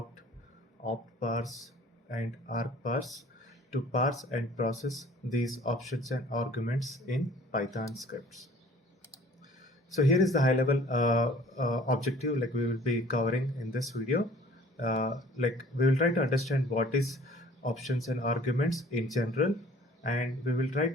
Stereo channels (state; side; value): normal; both; correlation 0.52